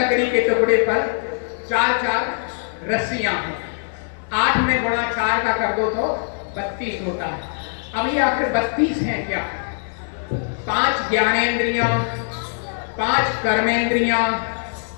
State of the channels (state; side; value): silent; right; 59 dB below the other